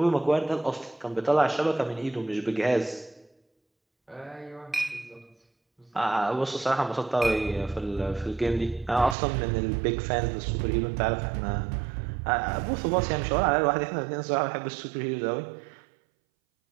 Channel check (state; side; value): drops out; left; at 9.2 s